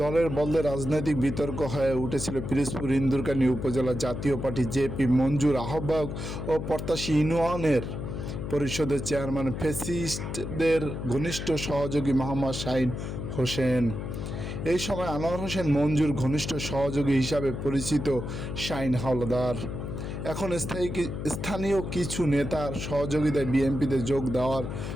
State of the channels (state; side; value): noise; left; hum, 5 dB below the sound